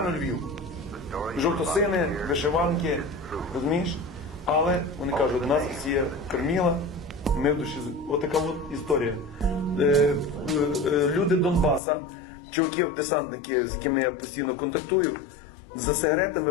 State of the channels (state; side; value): drops out; right; at 11.8 s